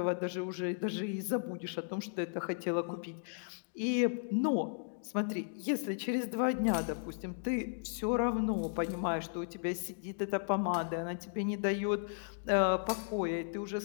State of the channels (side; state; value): right; silent; digital silence